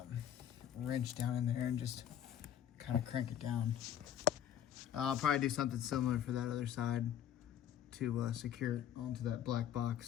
wrench down in there and just kind of crank it down. I'll probably do something similar for that other side to secure it onto that black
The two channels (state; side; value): quieter; right; 10.2 dB